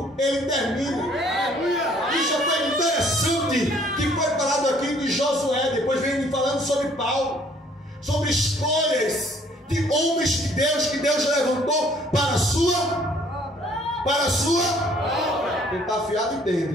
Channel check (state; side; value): normal; both; correlation 0.60